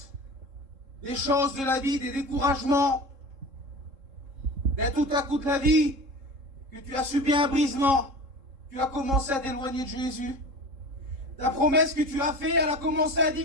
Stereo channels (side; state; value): left; late; 3.7 ms